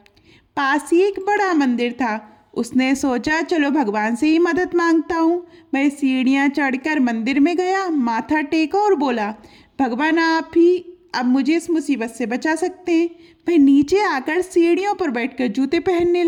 पास ही एक बड़ा मंदिर था। उसने सोचा, चलो भगवान से ही मदद मांगता हूँ। वह सीढ़ियाँ चढ़कर मंदिर में गया, माथा टेका और बोला, भगवान आप ही अब मुझे इस मुसीबत से बचा सकते हैं। वह नीचे आकर सीढ़ियों पर बैठकर जूते पहनने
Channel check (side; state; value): both; identical; correlation 1.00